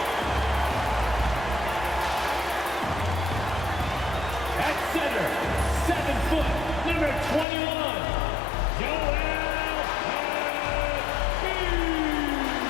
At center, 7 foot, number 21.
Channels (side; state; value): right; drops out; at 7.5 s